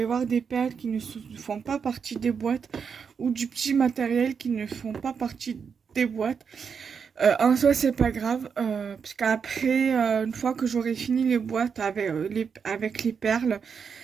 voir des perles qui ne font pas partie des boîtes ou du petit matériel qui ne font pas partie des boîtes. En soi, c'est pas grave, parce qu'après, une fois que j'aurai fini les boîtes avec les perles,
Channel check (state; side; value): quieter; left; 6.3 dB